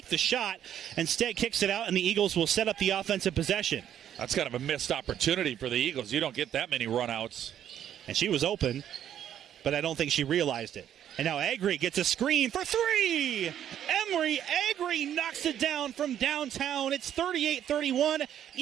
the shot, instead kicks it out, and the Eagles will set up the offensive possession. That's kind of a missed opportunity for the Eagles. You don't get that many runouts. And she was open, but I don't think she realized it. And now Agri gets a screen for three. Emery Agri knocks it down from downtown. It's 38-31.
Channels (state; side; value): quieter; left; 10.3 dB